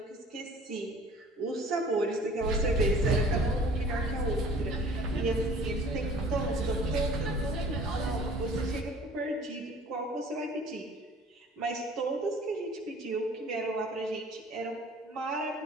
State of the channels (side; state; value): both; normal; correlation 0.50